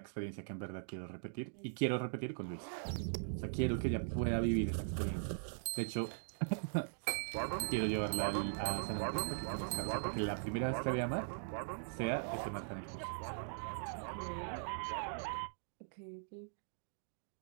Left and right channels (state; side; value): silent; left; digital silence